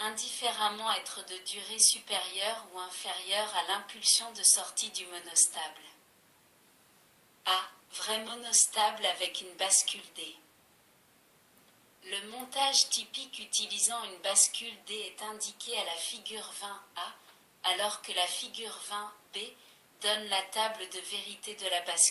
indifféremment être de durée supérieure ou inférieure à l'impulsion de sortie du monostable. A. Vrai monostable avec une bascule D. Le montage typique utilisant une bascule D est indiqué à la figure 20A, alors que la figure 20B donne la table de vérité de la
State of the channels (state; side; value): identical; both; correlation 1.00